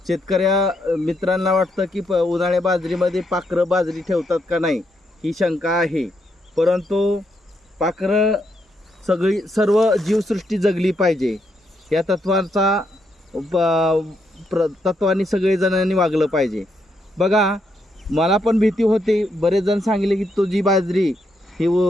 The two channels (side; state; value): both; normal; correlation 0.78